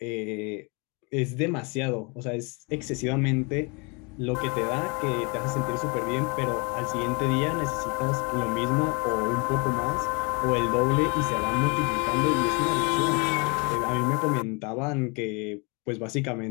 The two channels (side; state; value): right; quieter; 31.0 dB